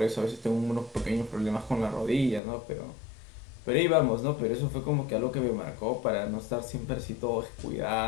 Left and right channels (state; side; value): drops out; right; at 2.4 s